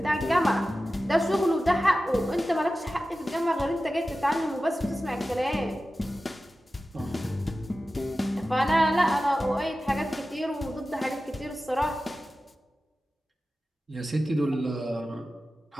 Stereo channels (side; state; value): both; normal; correlation 0.94